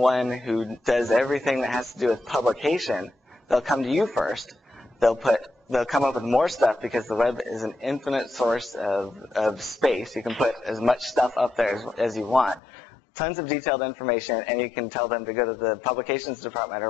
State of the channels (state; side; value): drops out; right; at 12.6 s